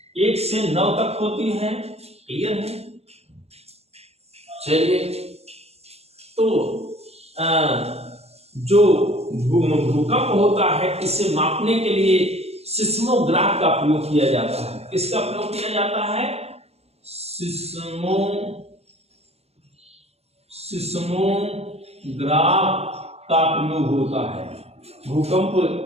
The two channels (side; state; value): left; late; 0.30 ms